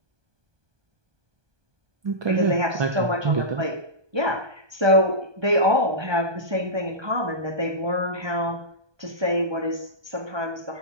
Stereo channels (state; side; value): late; left; 1.2 ms